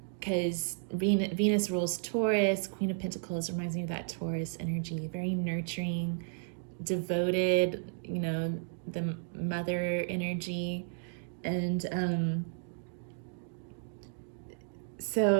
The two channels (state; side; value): silent; left; digital silence